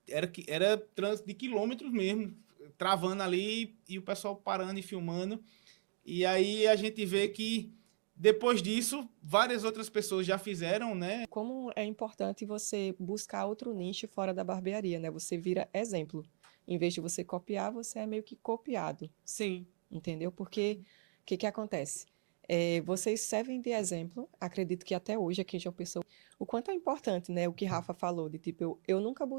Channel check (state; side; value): silent; left; digital silence